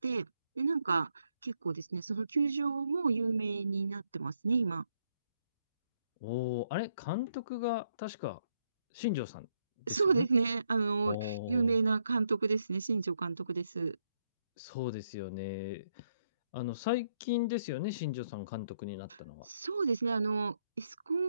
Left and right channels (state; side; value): inverted; both; correlation -0.76